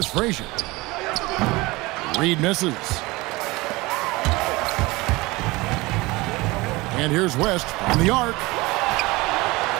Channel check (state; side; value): quieter; left; 22.2 dB